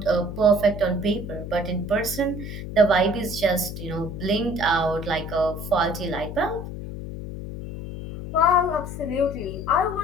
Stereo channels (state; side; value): noise; left; hum, 8 dB below the sound